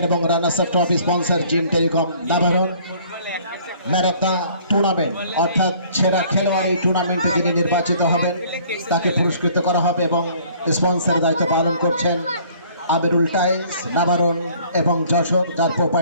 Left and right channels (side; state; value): both; inverted; correlation -0.56